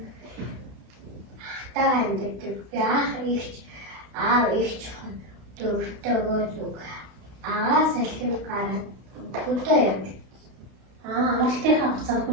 Ахтайгаа амьдэрдэг. Би аав эгч дөрөвтэйгөө зүг. Агаас салхин гараад хөдөө явдаг. Амралтынхаа хугацаанд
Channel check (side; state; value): left; late; 32 ms